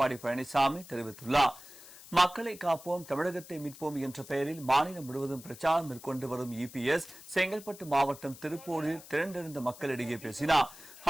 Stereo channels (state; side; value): noise; left; hiss, 18 dB below the sound